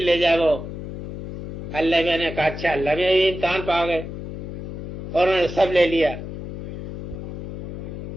جائے وہ۔ اللہ میں نے کہا اچھا، اللہ میں امتحان پا گئے اور انہوں نے سب لے لیا۔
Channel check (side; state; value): left; noise; hum, 8 dB below the sound